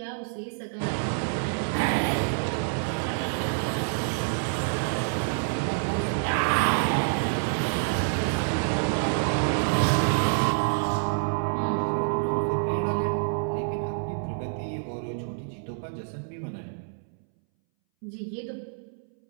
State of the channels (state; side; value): silent; left; 60 dB below the other